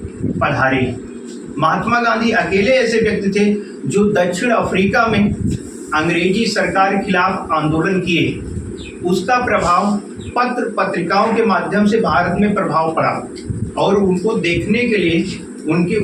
पधारे। महात्मा गांधी अकेले ऐसे व्यक्ति थे जो दक्षिण अफ्रीका में अंग्रेजी सरकार के खिलाफ आंदोलन किए। उसका प्रभाव पत्र पत्रिकाओं के माध्यम से भारत में प्रभाव पड़ा, और उनको देखने के लिए, उनके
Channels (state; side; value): identical; both; correlation 1.00